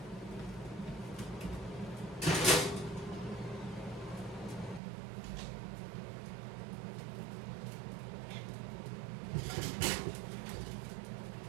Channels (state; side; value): drops out; left; at 4.8 s